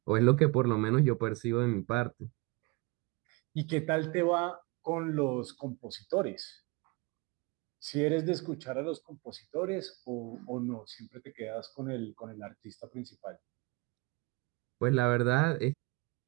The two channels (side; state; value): left; quieter; 25.2 dB